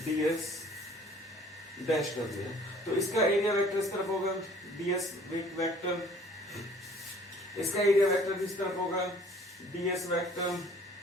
ds डैश कर दिया। तो इसका एरिया वेक्टर इस तरफ होगा, ds वेक्टर, इसका एरिया वेक्टर भी इस तरफ होगा, ds वेक्टर,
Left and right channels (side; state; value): both; normal; correlation 0.54